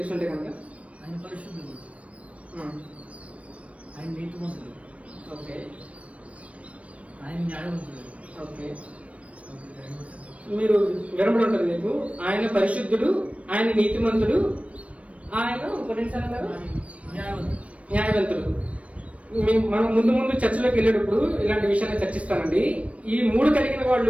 ఉంటే కనుక. ఆయన పరిశుద్ధుడు, ఆయన నీతిమంతుడు, ఓకే, ఆయన న్యాయవంతుడు. ఓకే, మీరు వినబడి ఉంటుంది మీకు. ఆయన పరిశుద్ధుడు, ఆయన నీతిమంతుడు, ఆయన న్యాయవంతుడు. మనం ముందు చర్చలోకి వెళ్ళేటప్పుడు ఇలాంటి విషయాన్ని చర్చిస్తానండి. ఈ 3 కలిగిన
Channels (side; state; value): left; late; 0.064 ms